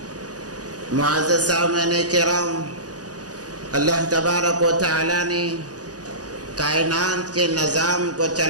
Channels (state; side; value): late; left; 0.68 ms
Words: معزز سامعین کرام اللہ تبارک و تعالیٰ نے کائنات کے نظام کو